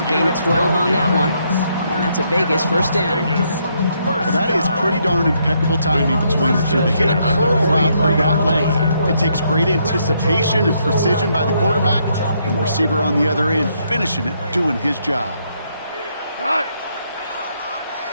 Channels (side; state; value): both; inverted; correlation -0.74